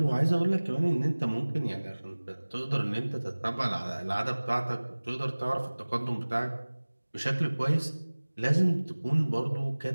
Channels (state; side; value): inverted; both; correlation -1.00